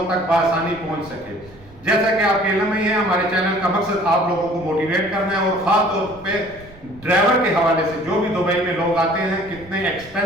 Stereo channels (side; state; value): right; noise; rumble, 22 dB below the sound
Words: تک بآسانی پہنچ سکے۔ جیسا کہ آپ کے علم میں ہی ہے، ہمارے چینل کا مقصد آپ لوگوں کو موٹیویٹ کرنا ہے اور خاص طور پہ ڈرائیور کے حوالے سے جو بھی دبئی میں لوگ آتے ہیں کتنے